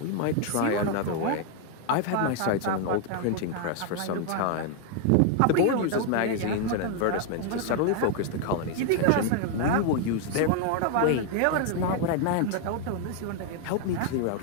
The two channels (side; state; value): both; different; correlation 0.00